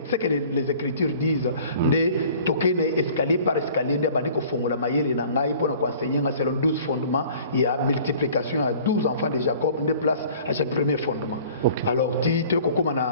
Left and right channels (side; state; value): both; inverted; correlation -0.49